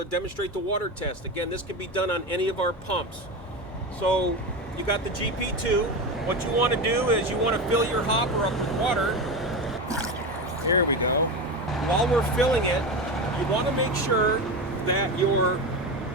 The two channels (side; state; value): both; normal; correlation 0.21